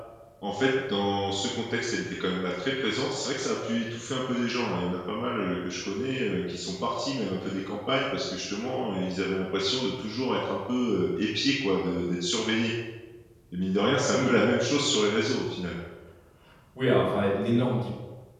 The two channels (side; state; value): both; identical; correlation 1.00